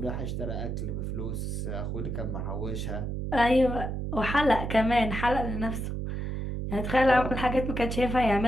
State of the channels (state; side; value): noise; right; hum, 3 dB below the sound